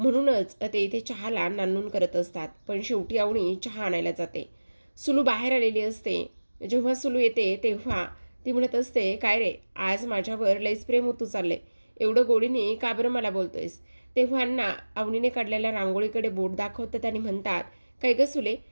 ते इथे चहाला नानून करत असतात. पण शेवटी अवनी चहा आणायला जाते. सुलू बाहेर आलेली असते. जेव्हा सुलू येते तेव्हा ती म्हणत असते, काय रे आज माझ्यावर लईच प्रेम होतू चालले, एवढं गोडीने का बरं मला बोलतोयस? तेव्हा अण्णा अवनीने काढलेल्या रांगोळीकडे बोट दाखवतात आणि म्हणतात, काय ग सुले,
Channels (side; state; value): both; inverted; correlation -1.00